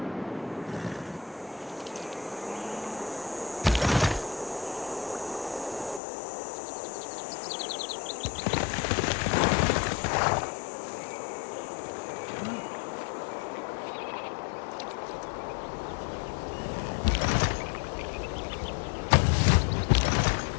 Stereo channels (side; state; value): right; drops out; at 6.0 s